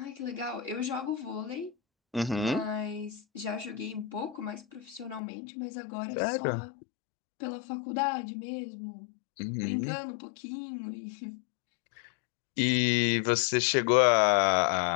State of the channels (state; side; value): drops out; right; at 5.2 s